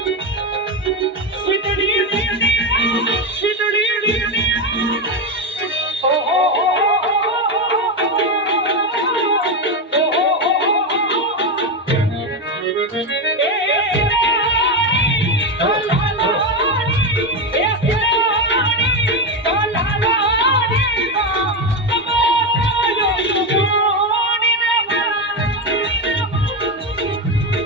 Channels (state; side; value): normal; both; correlation 0.11